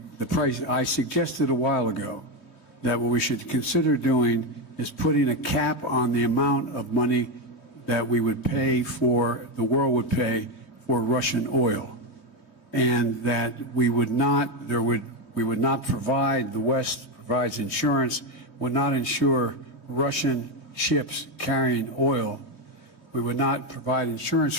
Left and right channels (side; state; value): right; late; 18 ms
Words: price. I suggested a while ago that what we should consider doing is putting a cap on the amount of money that we would pay for, the world would pay for Russian oil, and that we would not provide, the West provides insurance, would not insure Russian ships carrying oil. We would not provide insurance